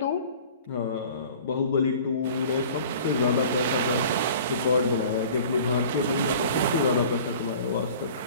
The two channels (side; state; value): both; inverted; correlation -0.45